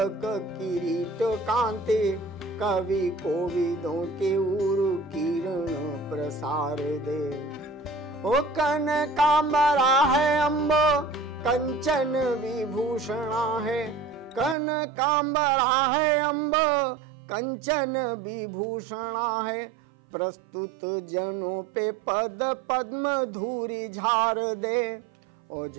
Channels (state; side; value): drops out; left; at 14.6 s